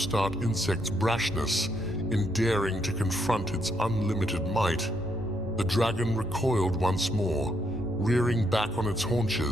insect's brashness in daring to confront its unlimited might, the dragon recoiled once more, rearing back on its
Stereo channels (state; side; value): normal; both; correlation 0.75